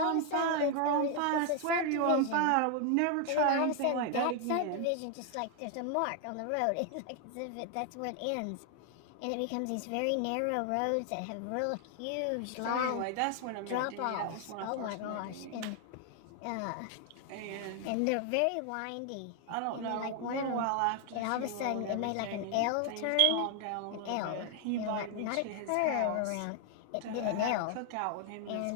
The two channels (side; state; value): both; different; correlation 0.00